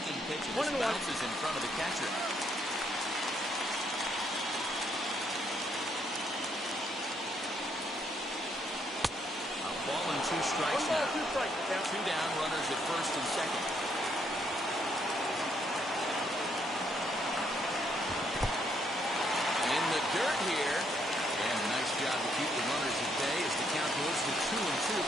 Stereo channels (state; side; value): normal; both; correlation 0.72